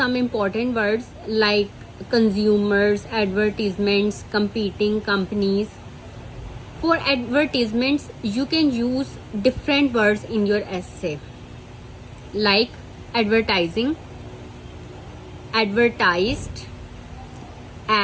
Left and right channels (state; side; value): identical; both; correlation 1.00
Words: important words like consumers, advertisements, competing companies. For advertisements, you can use different words in your essay like advertising, advertised,